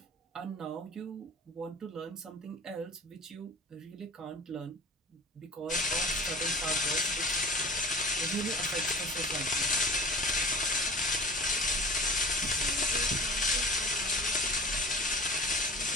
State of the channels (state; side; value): normal; both; correlation 0.37